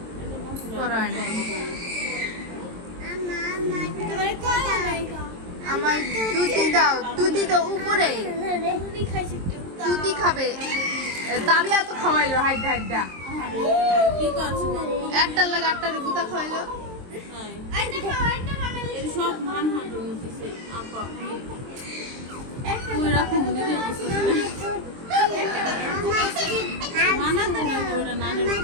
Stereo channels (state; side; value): late; left; 23 ms